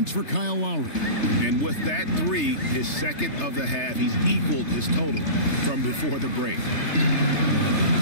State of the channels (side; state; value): right; late; 3.3 ms